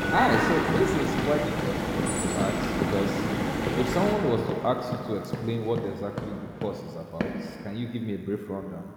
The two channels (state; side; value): identical; both; correlation 1.00